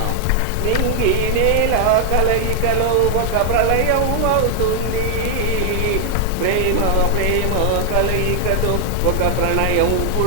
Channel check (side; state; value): both; different; correlation 0.00